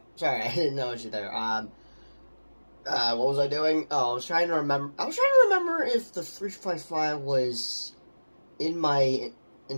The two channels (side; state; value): both; inverted; correlation -1.00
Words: Sorry, I didn't notice you there. What was I doing? Oh, I was trying to remember. I was trying to remember if the 355 was in my